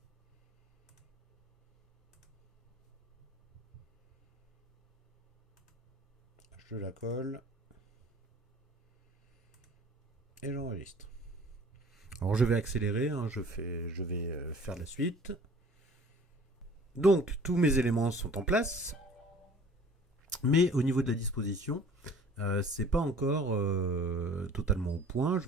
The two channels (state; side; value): normal; both; correlation 0.48